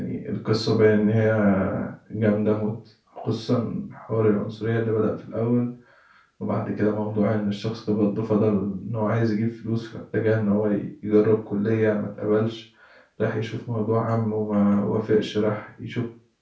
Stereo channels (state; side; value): identical; both; correlation 1.00